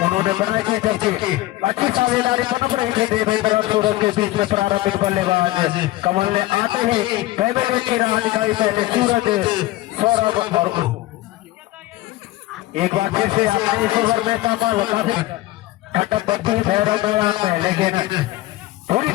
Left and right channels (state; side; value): quieter; right; 17.2 dB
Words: उन्होंने बनाई थी, जबकि अच्छी साझेदारी पनप रही थी देवेंद्र और सूरज के बीच में। प्रारंभिक बल्लेबाज कमल ने आते ही पहले विकेट की राह निकाली, पहले सूरज, सौरभ और एक बार फिर से आपने इस ओवर में कमल काफी ठंडक बढ़ती हुई भैरव मैदान में, लेकिन पूरी